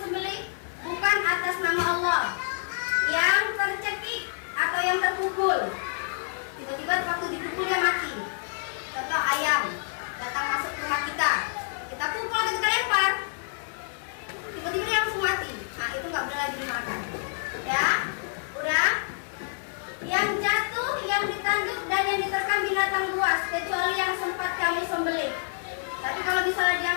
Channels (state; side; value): silent; right; digital silence